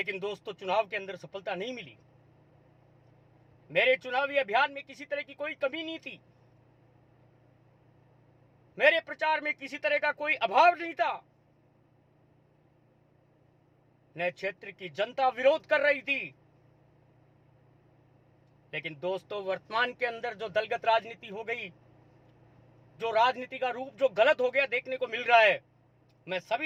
दोस्तों चुनाव के अंदर सफलता नहीं मिली। मेरे चुनावी अभियान में किसी तरह की कोई कमी नहीं थी, मेरे प्रचार में किसी तरह का कोई अभाव नहीं था। न क्षेत्र की जनता विरोध कर रही थी। लेकिन दोस्तों वर्तमान के अंदर जो दलगत राजनीति हो गई, जो राजनीति का रूप जो गलत हो गया देखने को मिल रहा है, मैं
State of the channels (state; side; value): identical; both; correlation 1.00